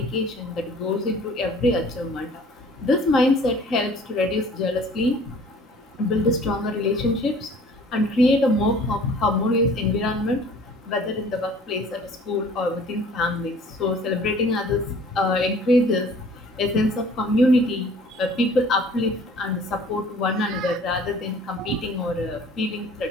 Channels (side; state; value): both; normal; correlation 0.51